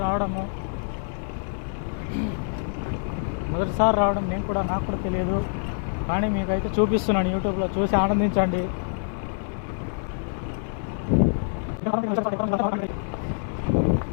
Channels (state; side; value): silent; right; digital silence